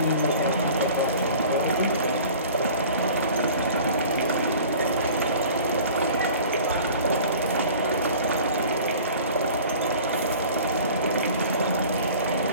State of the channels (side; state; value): both; inverted; correlation -0.45